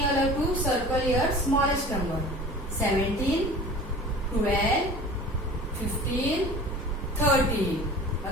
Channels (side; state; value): both; normal; correlation 0.41